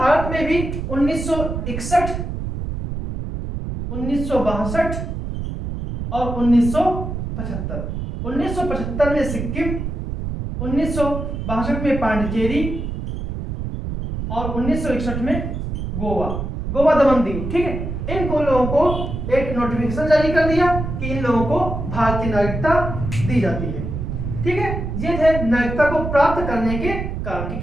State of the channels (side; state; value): right; noise; rumble, 5 dB below the sound